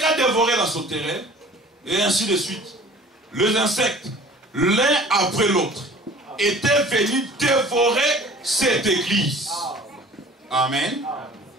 dévoré la sauterelle, et ainsi de suite. Les insectes, l'un après l'autre, étaient venus dévorer cette église. Amen.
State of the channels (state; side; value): normal; both; correlation 0.47